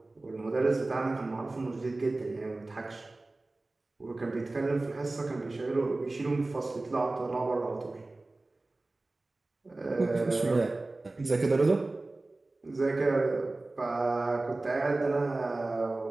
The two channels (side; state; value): left; quieter; 3.0 dB